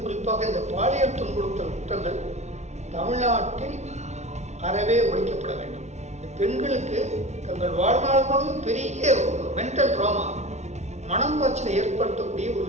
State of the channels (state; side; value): late; left; 0.32 ms